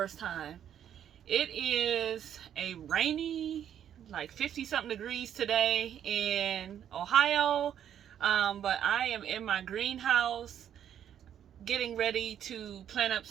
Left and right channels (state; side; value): quieter; left; 9.7 dB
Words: time. It is a rainy, like 50 something degrees today in Ohio, but I am in my greenhouse getting ready to plant up